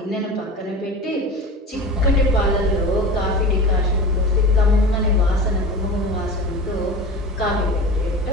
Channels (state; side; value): normal; both; correlation 0.32